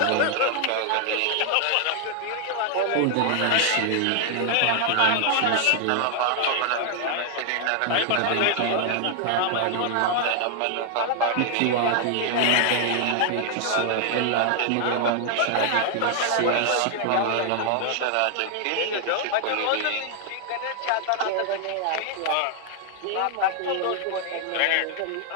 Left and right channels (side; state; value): both; different; correlation 0.00